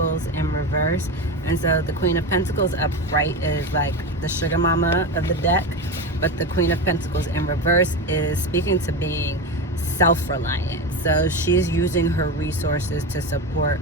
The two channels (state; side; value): normal; both; correlation 0.20